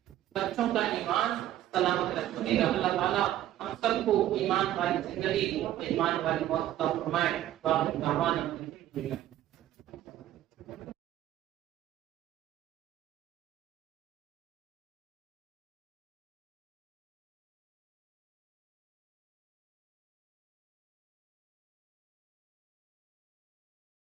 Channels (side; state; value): left; quieter; 13.0 dB